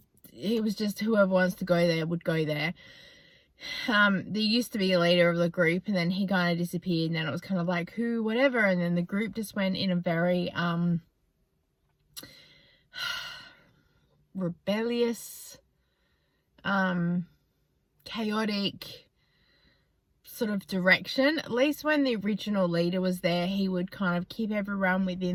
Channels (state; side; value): identical; both; correlation 1.00